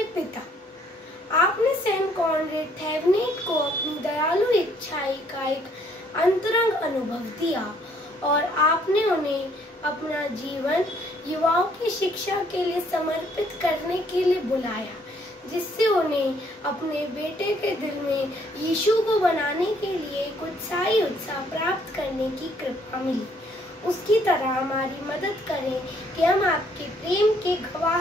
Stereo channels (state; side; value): normal; both; correlation 0.65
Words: पिता, आपने सेंट कॉनरेड थेवेनिट को अपनी दयालु इच्छाई का एक अंतरंग अनुभव दिया और आपने उन्हें अपना जीवन युवाओं की शिक्षा के लिए समर्पित करने के लिए बुलाया, जिससे उन्हें अपने बेटे के दिल में यीशु को बनाने के लिए एक उत्साही उत्साह प्राप्त करने की कृपा मिली। उसकी तरह हमारी मदद करें कि हम आपके प्रेम के